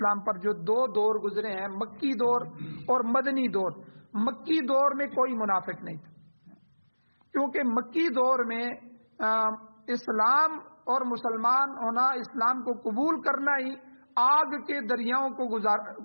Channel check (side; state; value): both; inverted; correlation -1.00